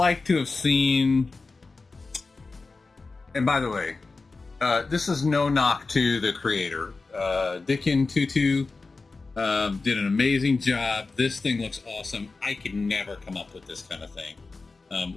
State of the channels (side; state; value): right; quieter; 3.9 dB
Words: to have seen. And by the way, this is no knock to the creator, Dicken Did an amazing job. This thing looks awesome. I could never come up with this kind of thing.